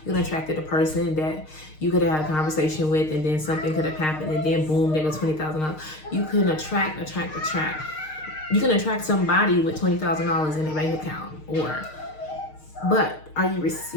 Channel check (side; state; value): right; late; 6.5 ms